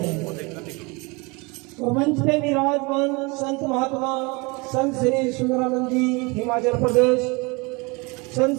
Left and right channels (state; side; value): quieter; left; 27.6 dB